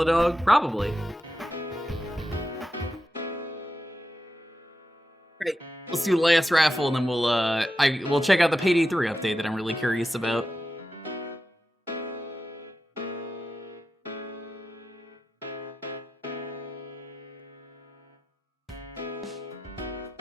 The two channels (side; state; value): both; normal; correlation 0.90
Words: Probably. Great. Let's do the last raffle, and then we'll check out the Payday 3 update that I'm really curious about.